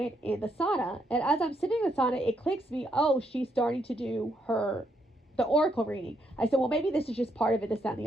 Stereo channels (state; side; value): normal; both; correlation 0.76